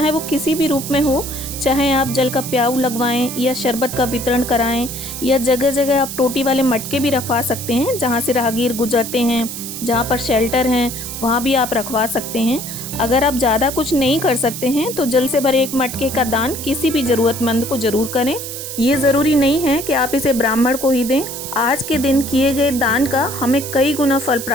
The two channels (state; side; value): noise; right; hiss, 8 dB below the sound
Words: वो किसी भी रूप में हो। चाहे आप जल का प्याऊ लगवाएं या शरबत का वितरण कराएं, या जगह जगह आप टोटी वाले मटके भी रखवा सकते हैं, जहाँ से राहगीर गुजरते हैं, जहाँ पर शेल्टर हैं वहाँ भी आप रखवा सकते हैं। अगर आप ज़्यादा कुछ नहीं कर सकते हैं तो जल से भरे एक मटके का दान किसी भी ज़रूरतमंद को ज़रूर करें। ये ज़रूरी नहीं है कि आप इसे ब्राह्मण को ही दें। आज के दिन किए गए दान का हमें कई गुना फल